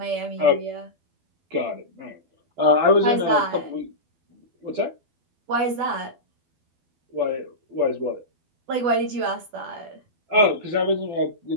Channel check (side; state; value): left; late; 12 ms